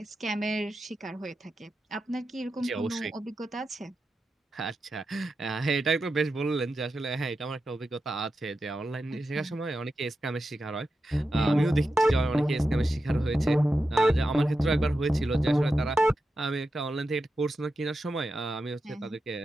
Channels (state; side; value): normal; both; correlation 0.90